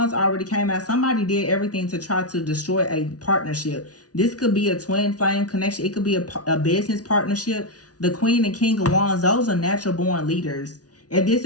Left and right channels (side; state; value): right; late; 0.68 ms